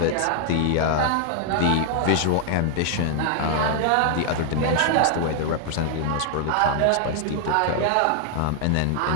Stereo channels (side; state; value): both; different; correlation 0.00